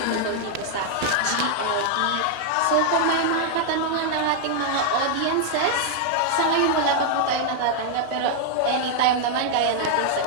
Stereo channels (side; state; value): both; different; correlation 0.00